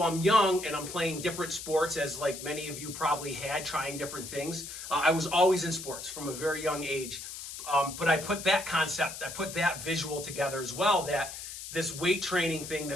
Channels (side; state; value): left; noise; hiss, 10 dB below the sound